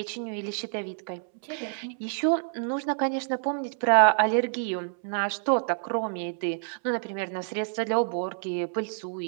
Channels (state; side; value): silent; left; 59 dB below the other